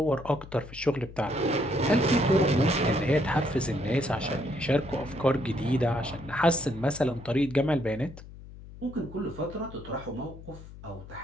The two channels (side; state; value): left; noise; hum, 16 dB below the sound